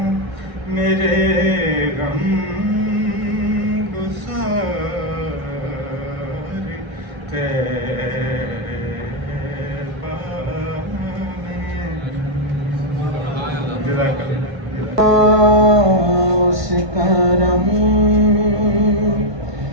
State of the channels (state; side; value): late; left; 1.6 ms